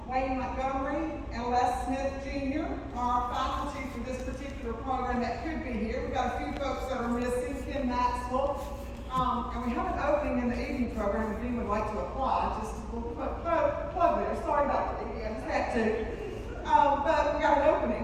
Wayne Montgomery, and Les Smith Jr. are faculty for this particular program that could be here. We've got a few folks that are missing: Kim Maxwell. And we have an opening in the evening program if you would like to apply. Just a little plug there. Sorry, Dr. Edie, I just had to. But we got an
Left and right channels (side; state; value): both; identical; correlation 1.00